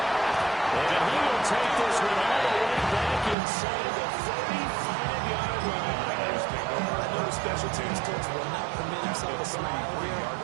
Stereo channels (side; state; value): left; drops out; at 3.4 s